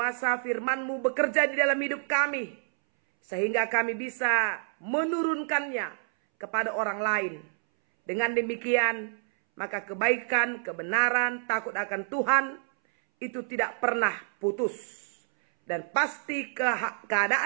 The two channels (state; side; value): silent; left; 59 dB below the other